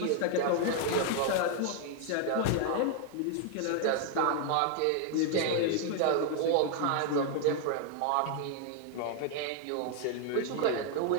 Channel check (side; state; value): both; different; correlation 0.00